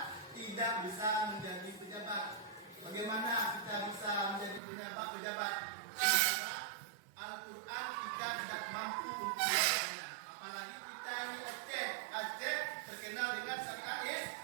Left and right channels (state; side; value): drops out; left; at 4.6 s